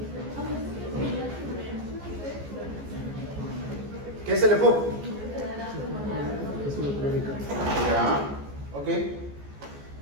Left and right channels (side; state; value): left; late; 14 ms